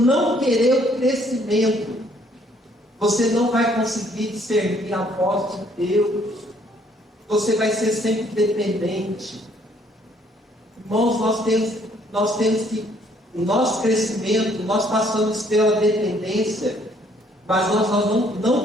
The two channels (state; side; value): normal; both; correlation 0.64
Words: querer o crescimento, você não vai conseguir discernir a voz de Deus. Você vai ser sempre dependente. Irmãos, nós temos que, o nosso crescimento, nós passamos pela dependência, mas nós não